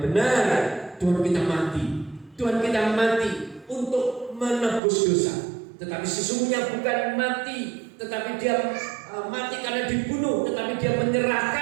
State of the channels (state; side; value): drops out; left; at 4.8 s